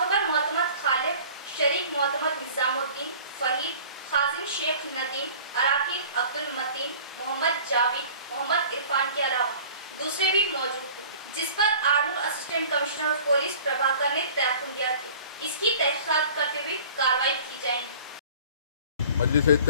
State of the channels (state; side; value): inverted; both; correlation -0.46